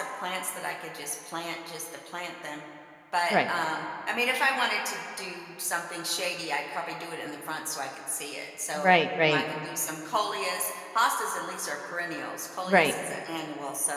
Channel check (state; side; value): identical; both; correlation 1.00